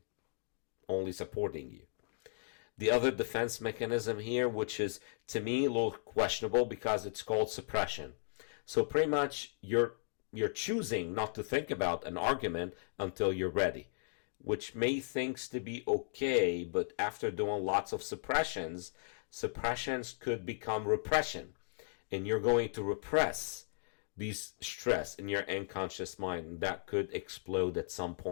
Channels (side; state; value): right; silent; digital silence